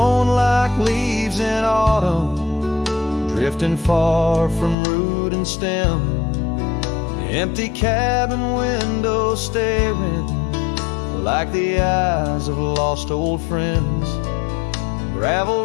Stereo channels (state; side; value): drops out; right; at 4.8 s